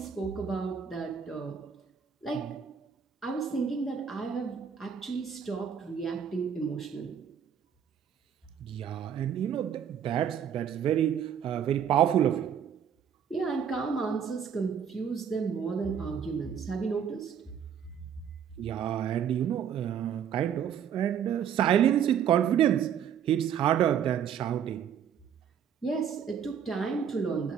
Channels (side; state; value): left; quieter; 8.2 dB